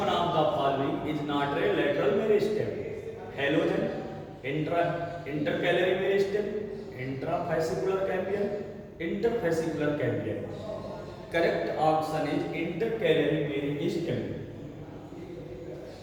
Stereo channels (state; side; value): identical; both; correlation 1.00